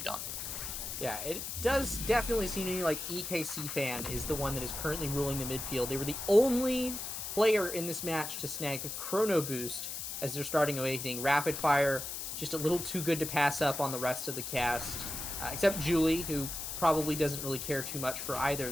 done. Yeah, it does definitely seem to me like EKC Fan is the one that is currently ruling the midfield. They were the only player in this match to snag a Chrono Boost as they're starting Awakening. Rapid Fire, just a little too good to pass up on the rest of the cast. Except Julie, who probably doesn't really care too much for either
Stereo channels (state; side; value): noise; left; hiss, 5 dB below the sound